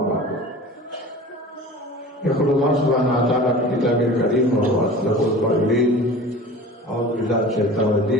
ba'd. Yaqulullah subhanahu wa ta'ala fi kitabil karim wa huwa asdaqul qailin. A'udzu billahi minasyaitonir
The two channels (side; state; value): both; normal; correlation 0.39